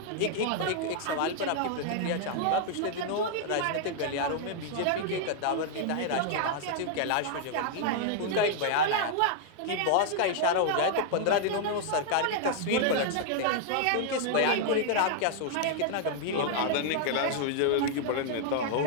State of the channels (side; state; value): both; different; correlation -0.01